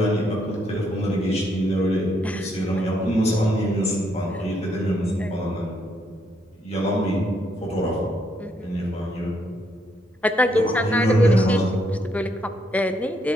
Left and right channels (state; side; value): normal; both; correlation 0.74